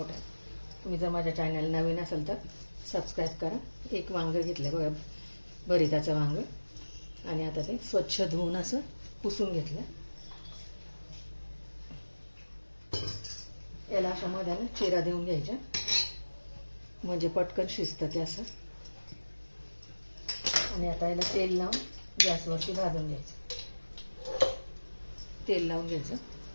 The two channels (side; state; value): both; inverted; correlation -1.00